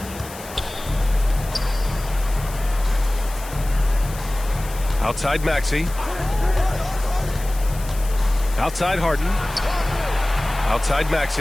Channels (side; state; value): left; noise; hiss, 16 dB below the sound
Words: Outside Maxey. Outside Harden. Outside